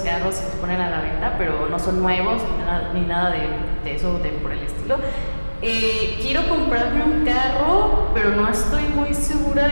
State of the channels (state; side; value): inverted; both; correlation -1.00